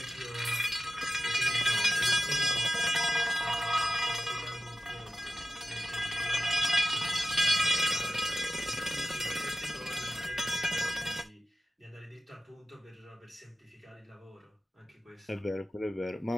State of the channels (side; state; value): both; normal; correlation 0.94